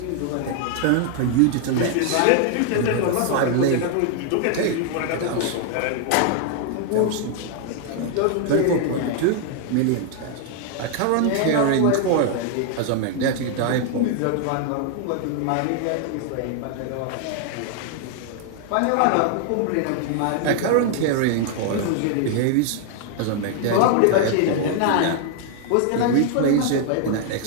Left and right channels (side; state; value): both; different; correlation 0.00